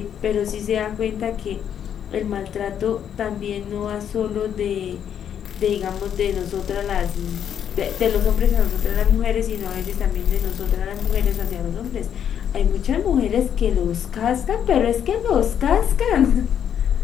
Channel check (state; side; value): quieter; right; 9.0 dB